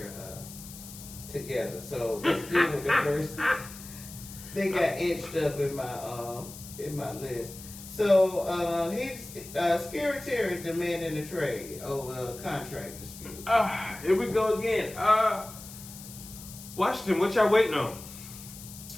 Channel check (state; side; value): noise; left; hiss, 15 dB below the sound